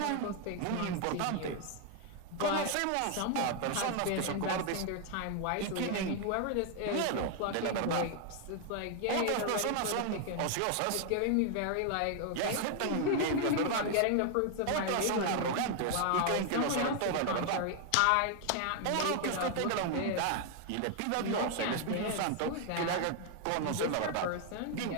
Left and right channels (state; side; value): different; both; correlation 0.00